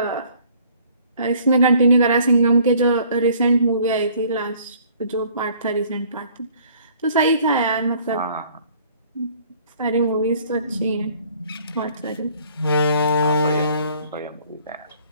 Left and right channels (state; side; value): inverted; both; correlation -0.57